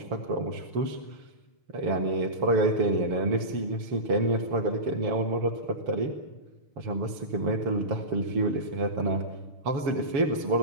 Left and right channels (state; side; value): late; left; 7.2 ms